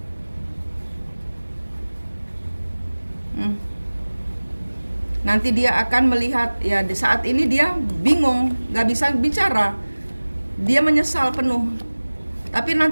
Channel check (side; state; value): both; inverted; correlation -1.00